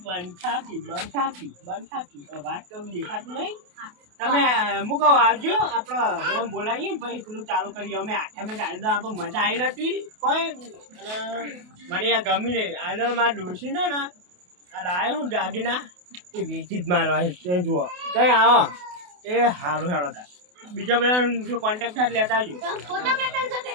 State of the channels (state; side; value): late; left; 28 ms